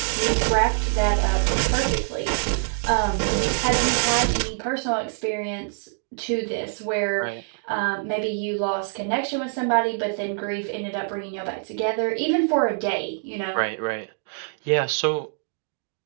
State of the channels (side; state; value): left; silent; digital silence